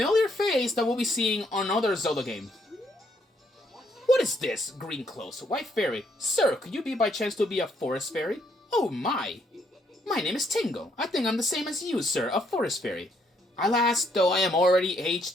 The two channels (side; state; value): both; normal; correlation 0.72